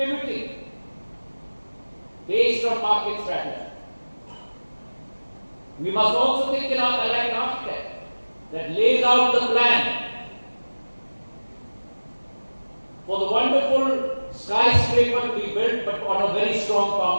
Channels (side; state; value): both; inverted; correlation -1.00